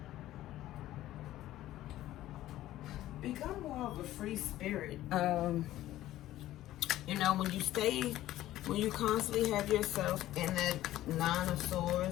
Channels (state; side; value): quieter; right; 14.4 dB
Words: Become more of a free spirit. You know, when you constantly have yourself in that 9 of